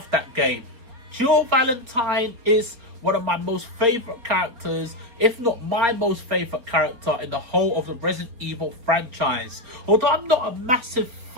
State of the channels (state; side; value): late; left; 4.1 ms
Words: that game. Jill Valentine is one of my most favourite characters, if not my most favourite character in the whole of the Resident Evil franchise. Although I'm not a massive